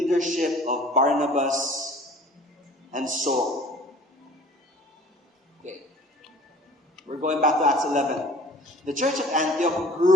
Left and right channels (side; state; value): both; normal; correlation 0.49